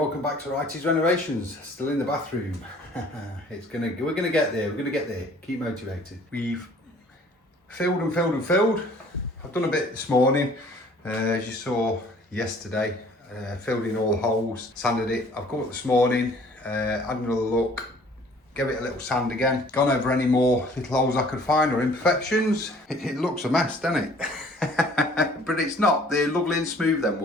back to Righty's Renovations. Still in the bathroom. We're gonna get there. Keep motivated. We've filled. I've done a bit this morning, as you saw yesterday. Filled in all the holes, sanded it. I've got up this morning, had another look. Give it a little sand again. Gone over any more little holes I could find or imperfections. It looks a mess, doesn't it? But it's not. They're lovely and smooth, them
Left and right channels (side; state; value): both; normal; correlation 0.54